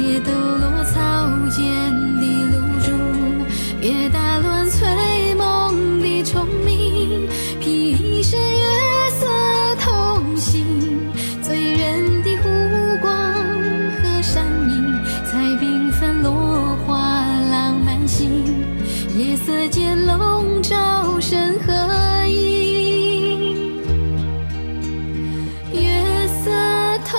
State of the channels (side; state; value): both; inverted; correlation -1.00